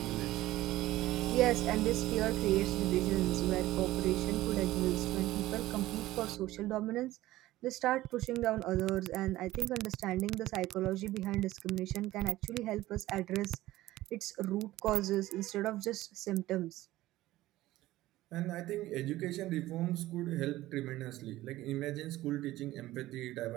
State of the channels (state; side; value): quieter; left; 16.3 dB